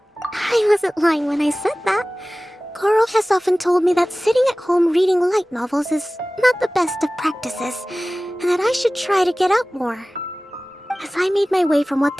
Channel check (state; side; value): normal; both; correlation 0.98